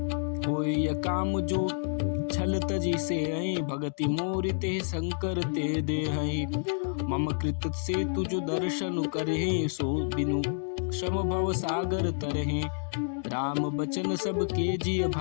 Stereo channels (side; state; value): right; silent; digital silence